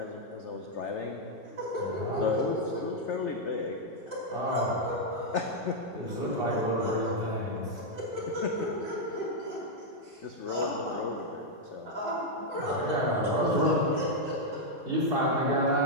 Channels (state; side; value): normal; both; correlation -0.02